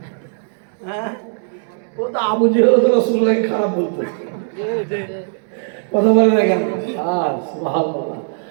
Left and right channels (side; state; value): left; silent; digital silence